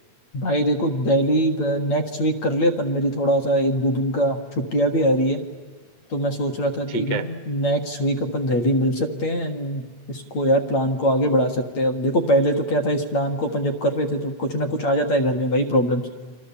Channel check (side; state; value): right; late; 8.8 ms